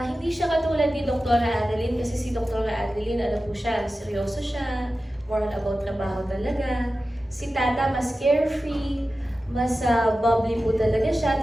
siya katulad ni Dr. Adeline kasi si Dr. Adeline, ano po siya, seryoso siya, more about trabaho talaga. Si Tata, mas carefree, mas bubbly po talaga siya.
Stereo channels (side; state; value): both; normal; correlation 0.94